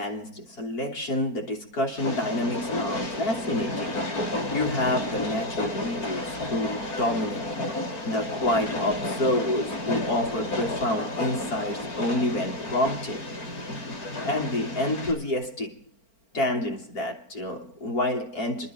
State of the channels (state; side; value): late; right; 4.4 ms